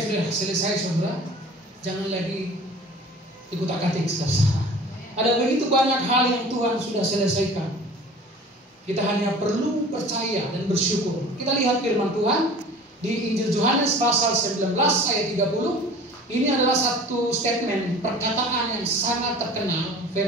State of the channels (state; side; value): normal; both; correlation 0.43